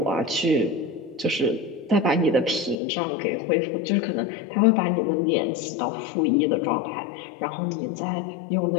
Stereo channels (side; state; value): right; drops out; at 2.8 s